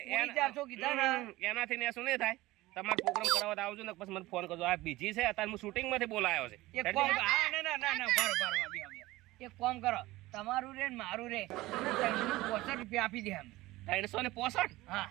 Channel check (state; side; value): quieter; left; 18.6 dB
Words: પૂરી 400 કીધા ને એનાથી ને શું નહીં થાય તમારે પ્રોગ્રામ કરાવવા તો આવજો ને પછી મને ફોન કરજો આ બીજી છે અત્યારે હું શૂટિંગ માંથી બોલાયો છે એક કામ હા ના ના ના પારો પારો એક કામ કરો તમારું રે ને મારું રે 365 રૂપિયા આપી દે અમે 365 હા